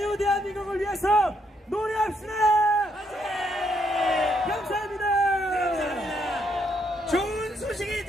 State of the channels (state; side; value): normal; both; correlation 0.74